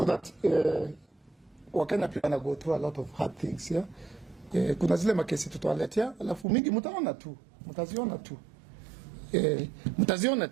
that Wakenya pia wana go through a lot of hard things, yeah? Kuna zile makesi tutawaletea, alafu mingi mtaziona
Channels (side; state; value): left; drops out; at 6.5 s